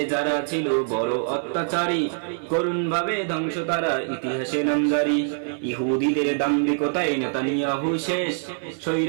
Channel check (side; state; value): left; silent; 61 dB below the other